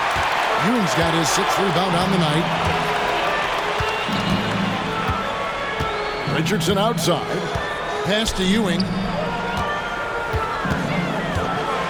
Ewing's got his 6th rebound on the night. Richardson outside. Pass to Ewing.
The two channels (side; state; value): both; identical; correlation 1.00